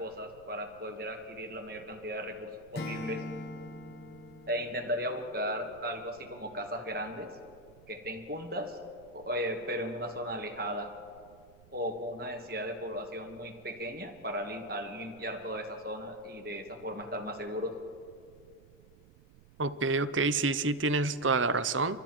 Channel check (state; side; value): noise; right; rumble, 24 dB below the sound